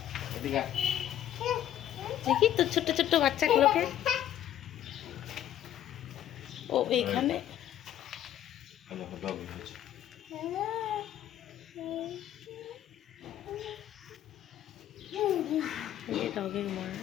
দেখি তো ছোট্ট ছোট্ট বাচ্চাগুলোকে। ও এইখানে ডগের মা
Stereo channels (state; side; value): quieter; right; 11.6 dB